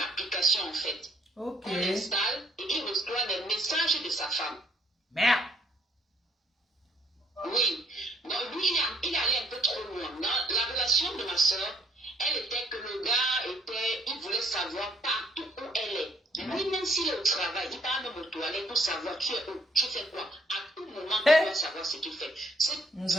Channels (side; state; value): both; normal; correlation 0.67